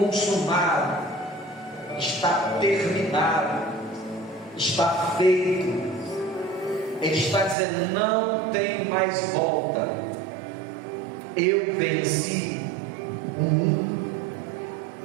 está terminado, está feito. Ele está dizendo: não tem mais volta. Eu venci o mundo.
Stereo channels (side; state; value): left; drops out; at 7.6 s